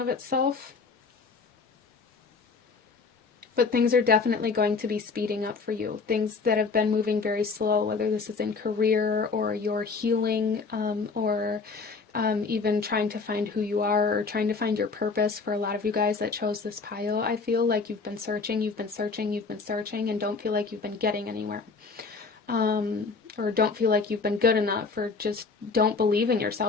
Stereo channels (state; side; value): quieter; right; 4.6 dB